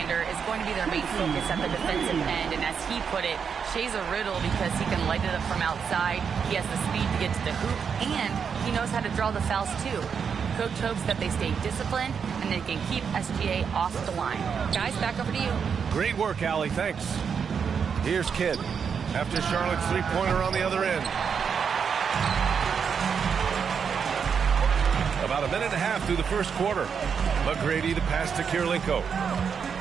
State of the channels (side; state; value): left; quieter; 6.7 dB